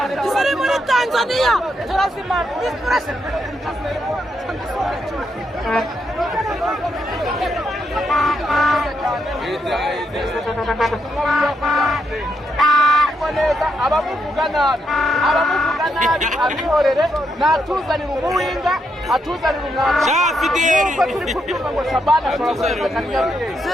Turi muri Tanzania turazimana inspiration abamuvuga nabi abihorere natuzanira umuwinga atuzanira umwanda nuko turi kubyumva ngo Shabana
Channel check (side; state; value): both; normal; correlation 0.79